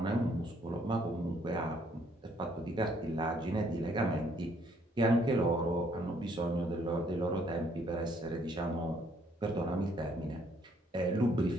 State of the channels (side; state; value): both; normal; correlation 0.66